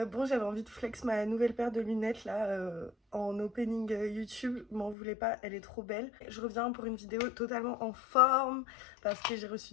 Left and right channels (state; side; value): drops out; right; at 5.0 s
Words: Bon, j'avais envie de flex ma nouvelle paire de lunettes là en opening YouTube. M'en voulez pas, elle est trop belle. Je reviens pour une vidéo totalement en forme parce que j'ai reçu